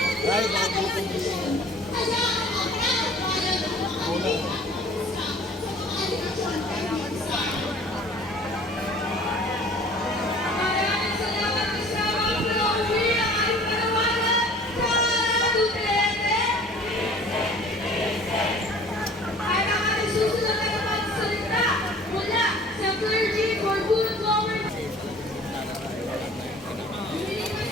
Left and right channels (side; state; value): both; normal; correlation 0.49